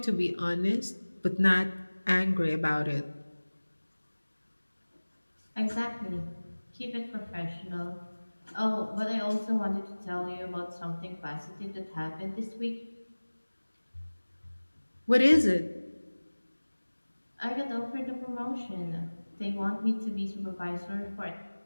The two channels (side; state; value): both; inverted; correlation -1.00